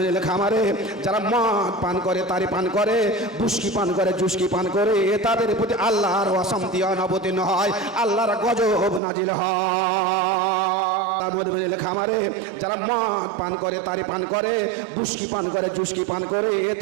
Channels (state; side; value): drops out; left; at 9.0 s